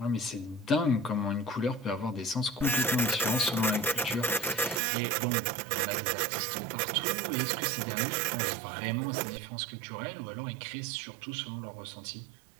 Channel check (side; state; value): left; drops out; at 4.8 s